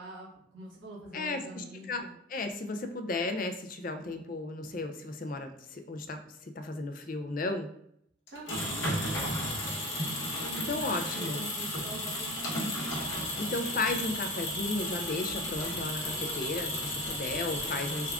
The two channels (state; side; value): normal; both; correlation 0.30